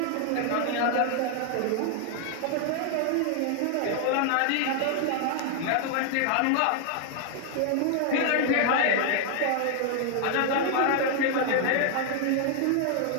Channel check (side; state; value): both; different; correlation 0.00